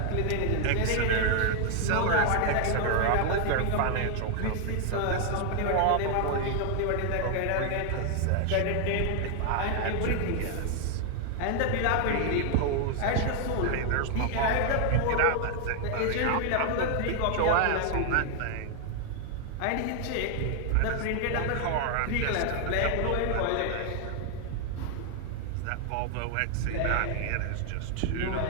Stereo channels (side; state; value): both; different; correlation 0.00